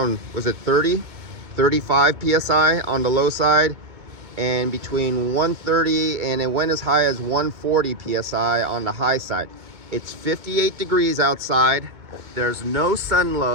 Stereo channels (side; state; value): left; late; 2.2 ms